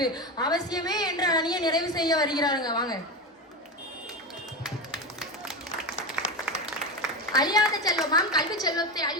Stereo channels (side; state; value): both; normal; correlation 0.18